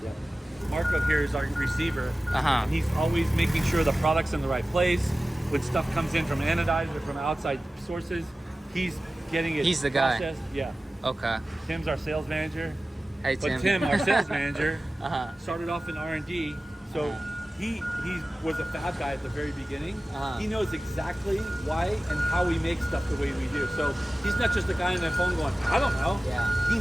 Yeah. Marco here is our receiver, and he's always making sure the product's in the right place. When stuff comes in from anodized or from outside sources, he's getting it. He's the guy. processed. Yeah. Okay. Tim's our sales manager. Hey Tim. But Tim, our sales manager, started off in R&D, so he was a fab guy at the very beginning. He knows exactly why and how we make stuff the way we do. So he's not just a guy on the phone going, I don't know. Yeah. He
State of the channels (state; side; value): normal; both; correlation 0.96